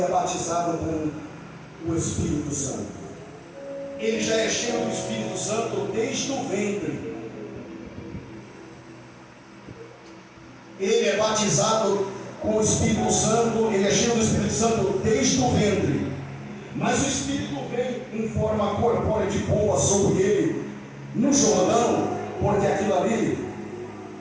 é batizado com o Espírito Santo. Ele já é cheio do Espírito Santo desde o ventre. Ele é batizado com o Espírito Santo, ele é cheio do Espírito Santo desde o ventre. Mas o Espírito vem em forma corpórea de pomba sobre ele no Jordão, porque aquilo ali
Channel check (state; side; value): identical; both; correlation 1.00